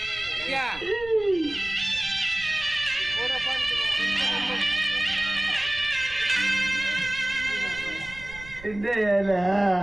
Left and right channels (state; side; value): noise; right; rumble, 18 dB below the sound